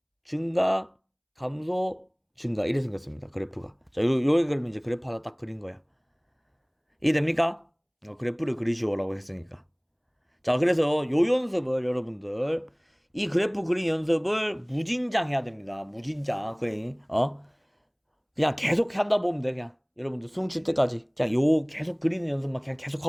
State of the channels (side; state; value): both; identical; correlation 1.00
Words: 증가, 감소, 증가. 이래 생겼습니다. 그래프가. 자, 요게 그러면 이제 그래프 하나 딱 그린 거야. 이해됩니까? 그래프를 그리시오라고 했으니까. 자, 그래서 요 연습을 여러분들 이 그래프 그린 연습을 무진장 해야 됩니다. 무진장. 그냥 계속 한다 보면 돼. 그냥 여러분들 수능 칠 때까지 그냥 요 계속 그리는 연습만 그냥 계속